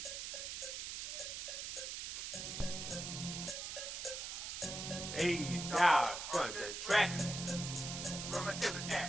Hey, now, on the track. Where my zipper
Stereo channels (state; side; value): noise; right; hiss, 5 dB below the sound